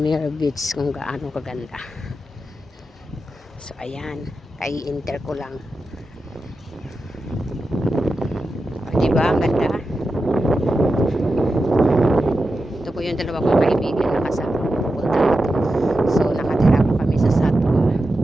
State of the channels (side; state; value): both; normal; correlation 0.90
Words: Beach kung gaano kaganda. So ayan, kai-enter ko lang. O, diba ang ganda? Ito po yung dalawa kong kaibigan na kasama ko pupunta dito. So nakatira po kami sa Satwa.